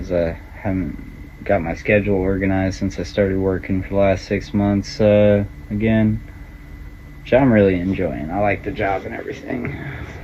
I haven't got my schedule organized since I started working for the last 6 months again, which I'm really enjoying. I like the job and everything.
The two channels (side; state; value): both; identical; correlation 1.00